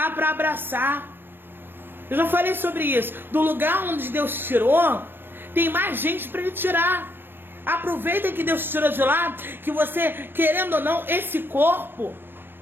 para abraçar. Eu já falei sobre isso. Do lugar onde Deus tirou, tem mais gente para ele tirar. Aproveita que Deus tirou de lá, que você, querendo ou não, esse corpo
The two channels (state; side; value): late; left; 0.097 ms